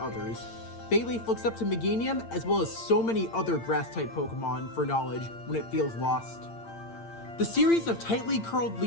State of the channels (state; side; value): late; right; 8.8 ms